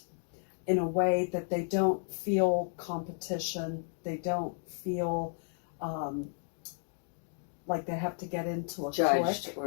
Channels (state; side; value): silent; right; 56 dB below the other